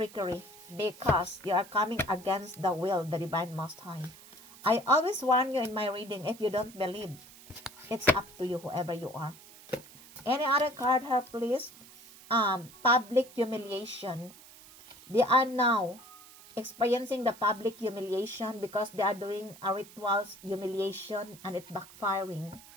because you are coming against the will of the Divine Most High. I always warn you in my reading, if you don't believe, it's up to you, whoever you are. Any other card here, please? Public humiliation. They are now experiencing the public humiliation because they are doing a rituals humiliation and it's backfiring.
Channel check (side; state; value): right; noise; hiss, 20 dB below the sound